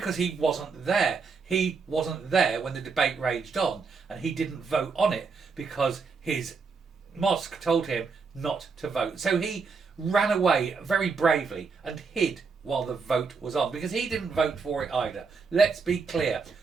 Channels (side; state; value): left; quieter; 5.0 dB